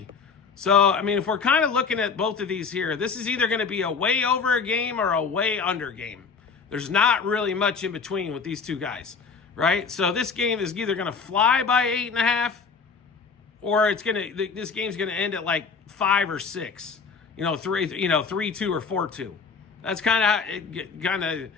So, if we're kind of looking at both of these here, this is either going to be a way over game or a way under game. There's not really much in between with these two guys. right? So this game is either going to fly by 8.5, or this game's going to end at like 5 or 6, 3-2 or 4-2. That's kind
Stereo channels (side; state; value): right; quieter; 5.3 dB